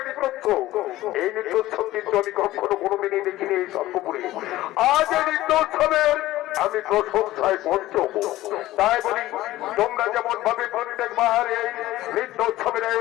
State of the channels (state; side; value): quieter; right; 16.1 dB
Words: নৃত্য, এই নৃত্যোৎসব কিন্তু আমি কখনো কোনোদিনই দেখিনি এই সর্বপুরে। আজ এই নৃত্যোৎসবের আমি প্রশংসায় পঞ্চম। তাই বলি তোমরা যেমন ভাবে প্রত্যেকবার এই নৃত্যোৎসবের